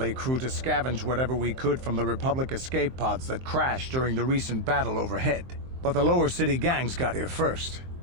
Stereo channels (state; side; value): late; left; 23 ms